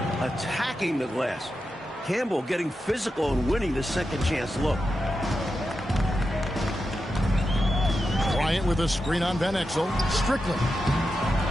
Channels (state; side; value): normal; both; correlation 0.89